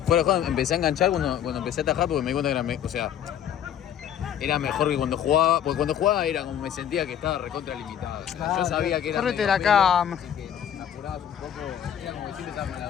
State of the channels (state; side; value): quieter; right; 9.7 dB